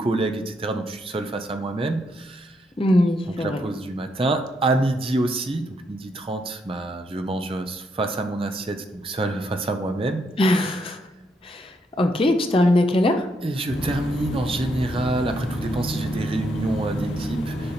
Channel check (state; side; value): normal; both; correlation 0.77